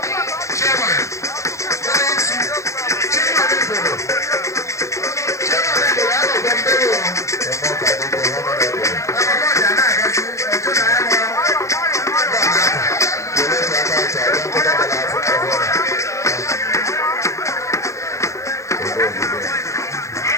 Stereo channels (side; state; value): right; late; 0.15 ms